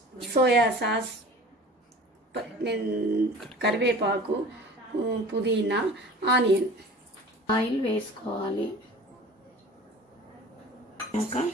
సోయా సాస్, కరివేపాకు, పుదీనా, ఆనియన్. ఆయిల్ వేసుకోవాలి. ఇంకా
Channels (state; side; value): normal; both; correlation 0.41